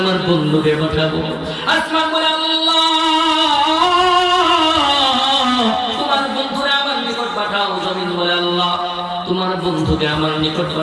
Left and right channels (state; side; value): identical; both; correlation 1.00